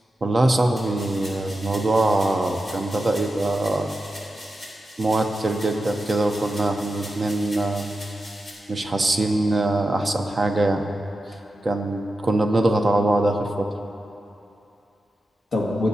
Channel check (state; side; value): normal; both; correlation 0.90